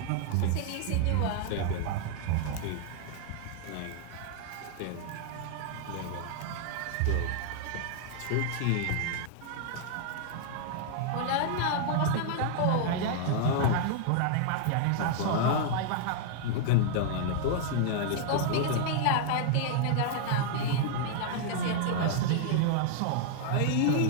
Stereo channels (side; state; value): both; different; correlation 0.00